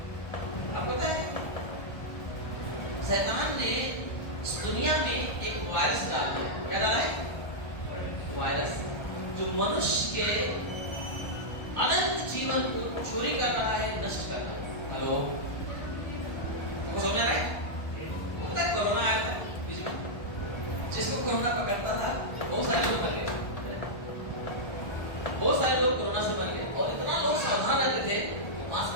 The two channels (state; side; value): late; right; 1.3 ms